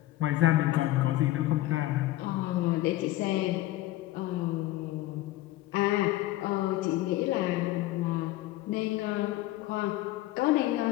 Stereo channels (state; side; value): quieter; right; 16.4 dB